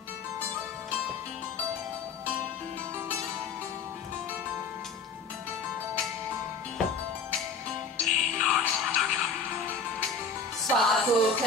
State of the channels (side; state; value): right; quieter; 4.6 dB